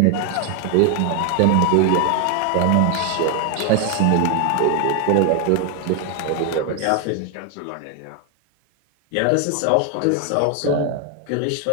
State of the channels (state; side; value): different; both; correlation 0.01